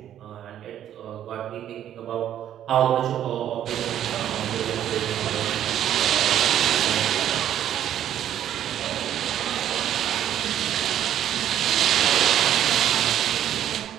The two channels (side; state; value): left; quieter; 10.9 dB